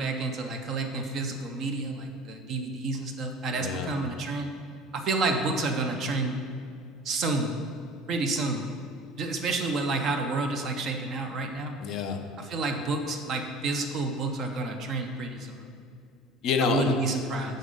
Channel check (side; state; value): both; normal; correlation 0.40